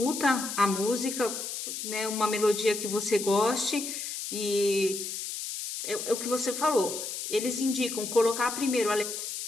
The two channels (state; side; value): noise; left; hiss, 6 dB below the sound